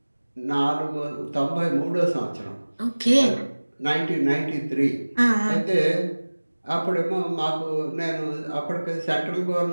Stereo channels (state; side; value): inverted; both; correlation -1.00